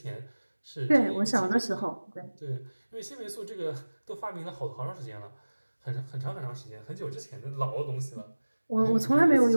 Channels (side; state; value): both; inverted; correlation -1.00